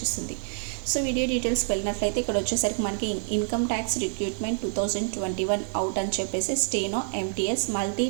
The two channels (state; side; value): silent; left; digital silence